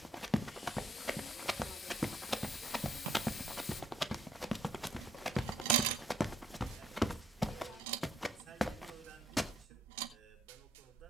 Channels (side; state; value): both; normal; correlation 0.70